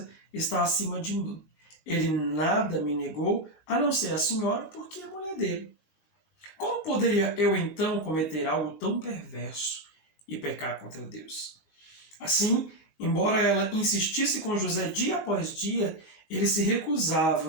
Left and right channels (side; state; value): right; late; 19 ms